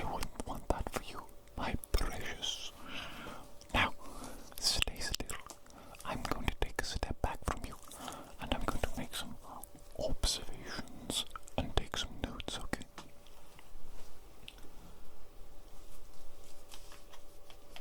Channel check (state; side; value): identical; both; correlation 1.00